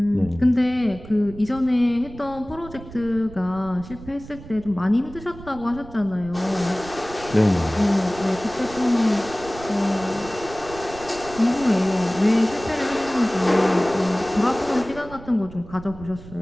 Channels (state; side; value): noise; right; rumble, 16 dB below the sound